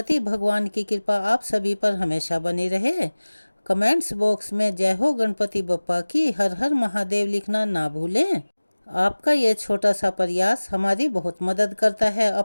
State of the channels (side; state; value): both; inverted; correlation -1.00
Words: भगवान की कृपा आप सभी पर हमेशा बनी रहे। कमेंट्स बॉक्स में जय हो गणपति बप्पा की, हर हर महादेव लिखना ना भूलें। आपका ये छोटा सा प्रयास हमारी बहुत मदद करता है।